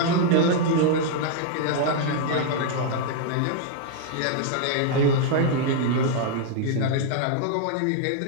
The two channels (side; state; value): both; different; correlation 0.00